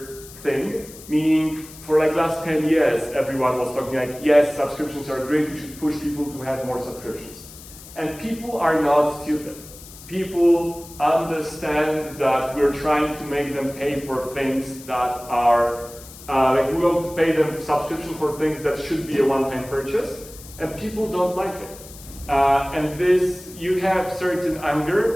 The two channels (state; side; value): noise; left; hiss, 18 dB below the sound